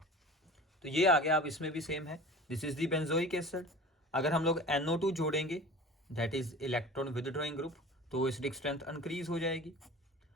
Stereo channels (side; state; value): both; normal; correlation 0.39